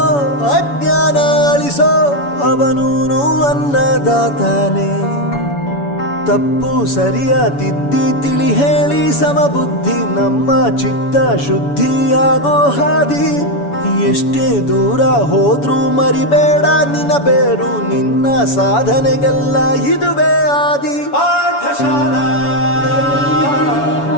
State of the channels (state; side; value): late; right; 7.0 ms